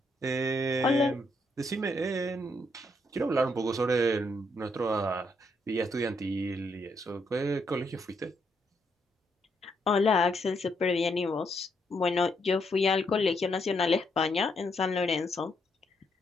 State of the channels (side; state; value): both; normal; correlation 0.75